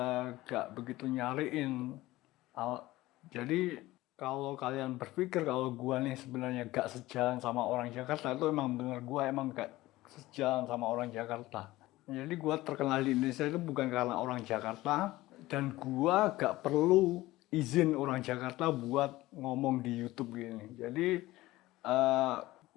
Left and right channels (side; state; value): right; quieter; 17.8 dB